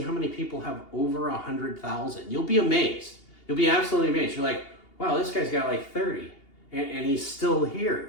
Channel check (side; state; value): right; late; 2.8 ms